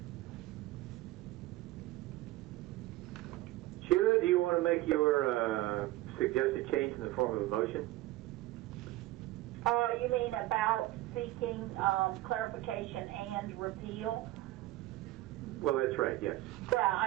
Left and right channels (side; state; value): left; quieter; 16.9 dB